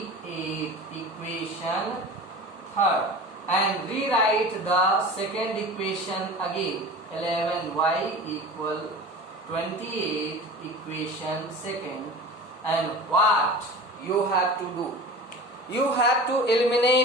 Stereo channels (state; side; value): normal; both; correlation 0.36